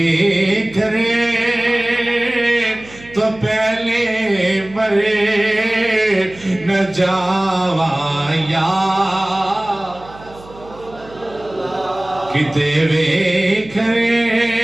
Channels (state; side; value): noise; right; hum, 21 dB below the sound